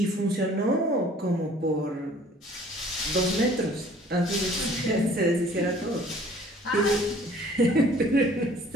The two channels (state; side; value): normal; both; correlation 0.53